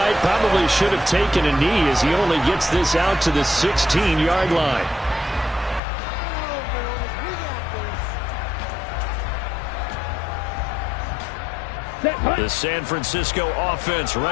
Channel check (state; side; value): drops out; right; at 5.8 s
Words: probably should have taken a knee as he only gets this out to the 16-yard line. The San Francisco offense